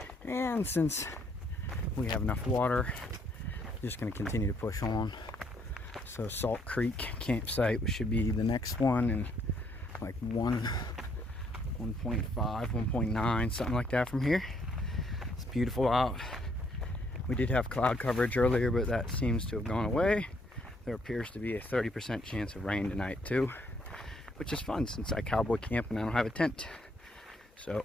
and since we have enough water, just going to continue to push on. So Salt Creek campsite should be the next one, and like 1.5, 1.9, something like that from here. It's beautiful out. We did have cloud coverage earlier, but that seems to have gone away. There appears to be a 30% chance of rain tonight too, which is fun since I cowboy camp and I don't have a tent. So,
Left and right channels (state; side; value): normal; both; correlation 0.70